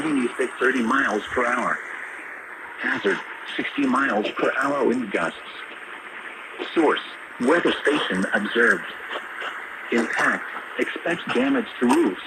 east at 30 miles per hour. Hazard, 60 miles per hour wind gusts. Source, weather station observed. Impact, expect damage to roofs,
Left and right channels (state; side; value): identical; both; correlation 1.00